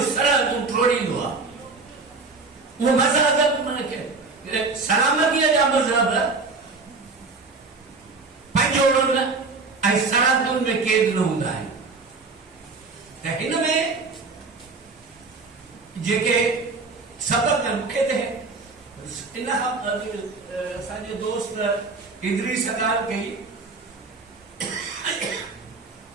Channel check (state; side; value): quieter; left; 4.1 dB